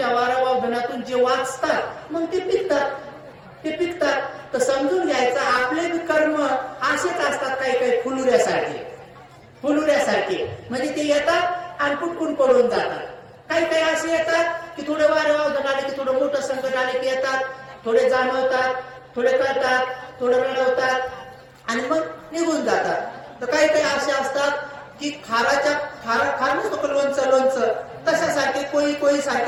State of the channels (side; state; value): both; identical; correlation 1.00